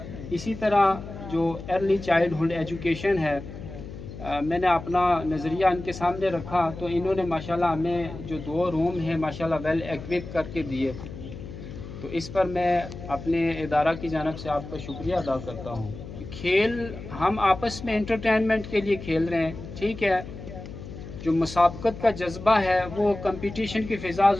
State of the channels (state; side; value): noise; left; hum, 12 dB below the sound